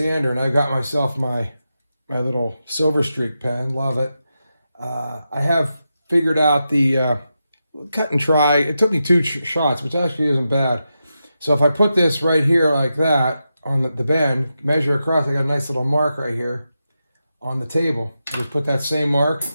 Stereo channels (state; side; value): inverted; both; correlation -0.89